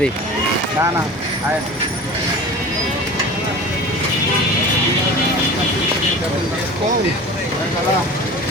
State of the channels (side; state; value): both; normal; correlation 0.37